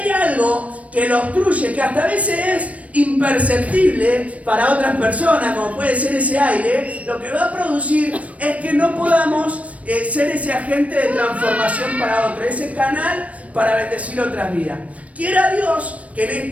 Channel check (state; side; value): late; left; 0.066 ms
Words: algo que lo obstruye, que hasta a veces es imperceptible para otras personas, como puede ser ese aire, lo que va a producir es que no podamos ser ese agente de transformación para otro, ese canal para bendecir otras vidas. Quiera Dios que en